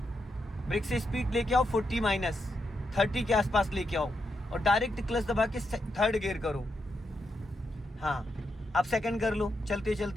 ब्रेक से स्पीड लेके आओ 40-30 के आसपास लेके आओ, और डायरेक्ट क्लच दबा के थर्ड गियर करो। हाँ, अब सेकंड कर लो चलते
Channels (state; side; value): normal; both; correlation 0.83